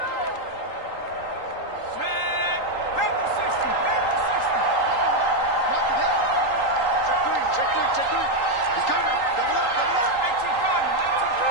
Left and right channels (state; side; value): late; right; 3.8 ms